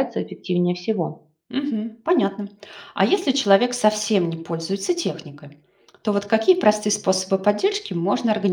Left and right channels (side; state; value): both; identical; correlation 1.00